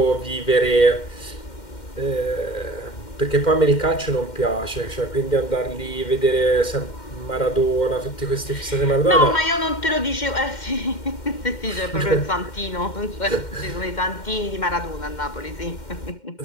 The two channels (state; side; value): late; right; 2.1 ms